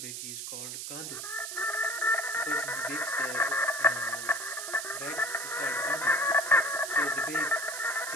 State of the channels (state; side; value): noise; right; hiss, 6 dB below the sound